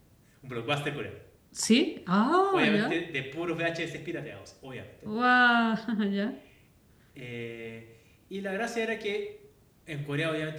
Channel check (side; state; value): both; identical; correlation 1.00